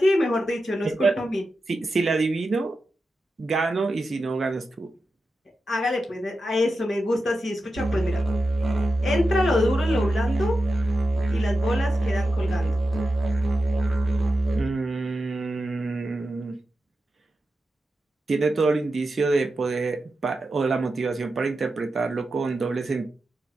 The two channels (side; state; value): both; normal; correlation 0.91